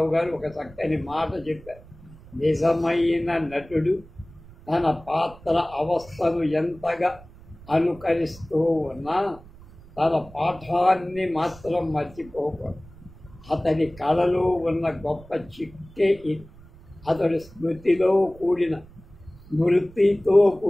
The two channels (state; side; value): noise; right; rumble, 21 dB below the sound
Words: గారు ఒక చక్కని మాట చెప్పారు. నిజమైన నటుడు తన పాత్ర అవస్థను ఎంతగా అనుకరిస్తూ ఉన్నా తన పాఠాన్ని మాత్రం మర్చిపోకూడదు. అతని కళలో ఉన్న గొప్ప చిక్కే ఇది. అతడు స్మృతితో కూడిన